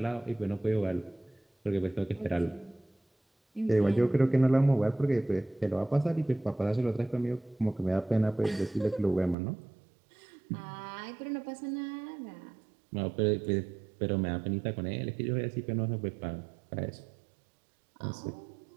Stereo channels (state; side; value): drops out; left; at 9.3 s